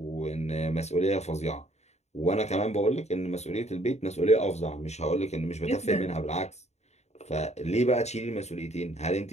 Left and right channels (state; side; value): late; right; 0.32 ms